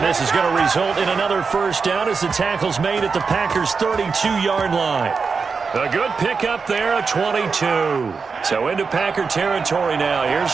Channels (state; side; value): quieter; left; 5.1 dB